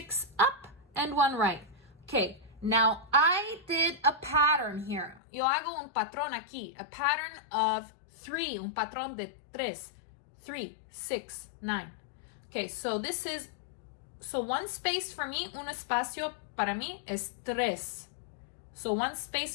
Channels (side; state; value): right; drops out; at 5.2 s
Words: up and 1 right. Okay, now I did a pattern here. Yo hago un patrón aquí, a pattern of 3, un patrón de 3, 3, 6, 9. Okay, so this is, so one space for me, un espacio para mí es 3. So one